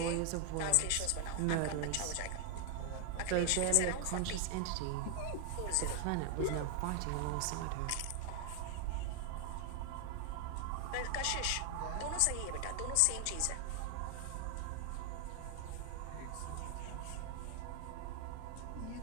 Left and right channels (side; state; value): both; different; correlation 0.00